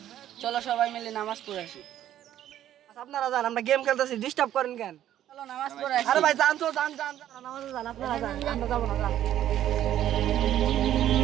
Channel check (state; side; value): quieter; left; 11.8 dB